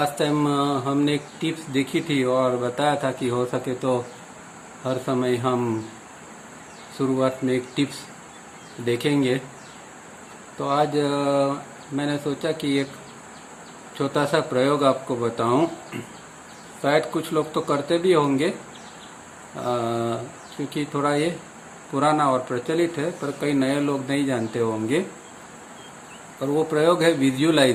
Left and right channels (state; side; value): identical; both; correlation 1.00